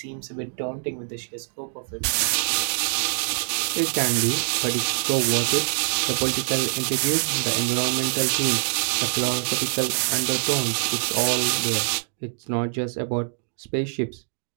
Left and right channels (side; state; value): left; silent; digital silence